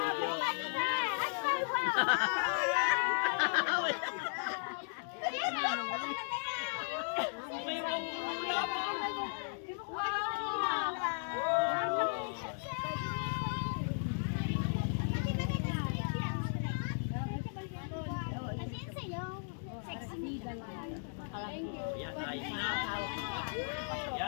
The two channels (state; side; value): silent; right; digital silence